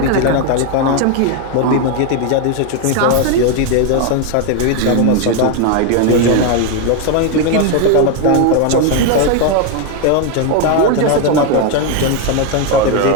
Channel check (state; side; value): different; both; correlation 0.01